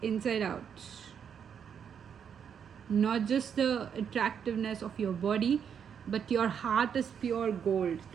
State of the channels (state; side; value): quieter; left; 7.7 dB